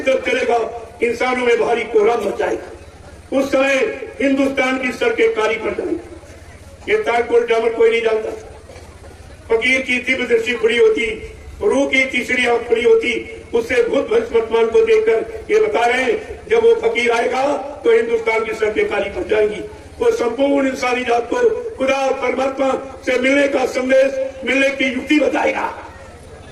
तरफ चलेगा, इंसानों में भारी कोहराम मच जाएगा। उस समय हिंदुस्तान की सड़कें काली पड़ जाएंगी। ये तारकोल जामर कोई नहीं जानता। फकीर की तीव्र दृष्टि खुली होती, रूह की तीसरी आंख खुली होती, उससे भूत भविष्य वर्तमान को देखकर ये बता रहे हैं जब वो फकीर आएगा तो हिंदुस्तान की सड़कें काली पड़ जाएंगी। वो संपूर्ण इंसानी जात को खुदा और परमात्मा से मिलने का संदेश, मिलने की युक्ति बताएगा।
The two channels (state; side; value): identical; both; correlation 1.00